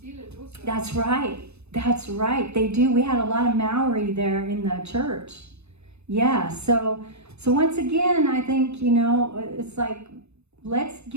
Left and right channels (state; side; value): late; left; 0.81 ms